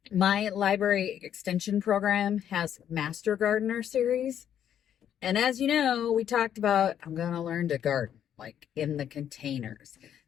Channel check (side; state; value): right; quieter; 9.7 dB